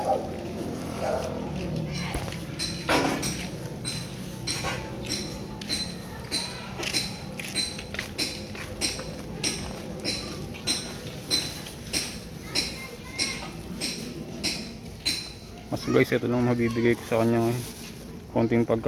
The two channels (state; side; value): identical; both; correlation 1.00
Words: Mas guys, ito lang mabibigay ko sa kanya ngayon. Konting